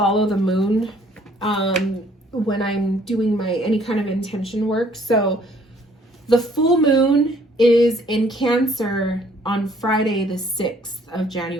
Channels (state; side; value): normal; both; correlation 0.61